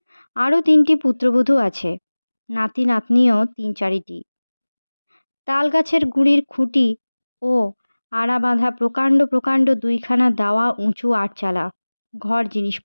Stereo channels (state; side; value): inverted; both; correlation -1.00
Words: আরও ৩টি পুত্রবধূ আছে, নাতি নাতনিও ৩-৪টি। তাল গাছের গুঁড়ির খুঁটি ও আড়া বাঁধা প্রকাণ্ড প্রকাণ্ড ২খানা দাওয়া উঁচু আটচালা, ঘর